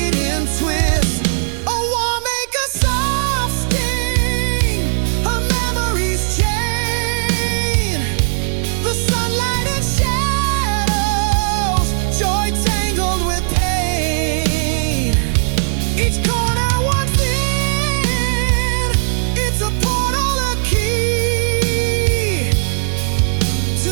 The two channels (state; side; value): silent; left; 68 dB below the other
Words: twists. A warm make a soft sting, her memories chain. The sunlight and shadows, joy tangled with pain. Each corner one thin, it's a portal, a key to